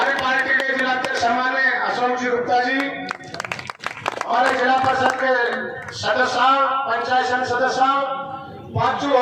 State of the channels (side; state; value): both; identical; correlation 1.00